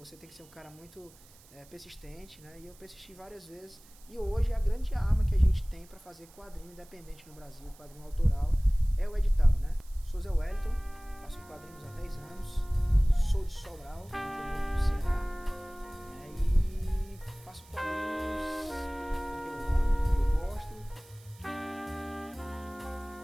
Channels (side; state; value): right; noise; hiss, 25 dB below the sound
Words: tem que ser um cara muito persistente, né? E eu persisti várias vezes. E hoje a grande arma que a gente tem para fazer quadrinho independente no Brasil, quadrinho autoral, é o edital, né? Sou Zé Wellington. Faço quadrinhos há 10 anos. Sou de Sobral, interior do Ceará.